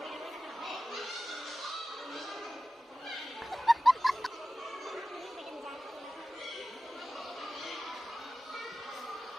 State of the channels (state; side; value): normal; both; correlation 0.95